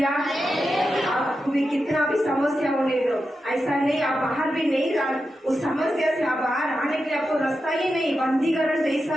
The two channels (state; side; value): normal; both; correlation 0.89